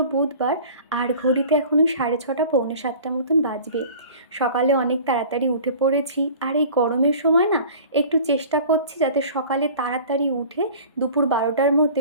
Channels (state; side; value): inverted; both; correlation -0.43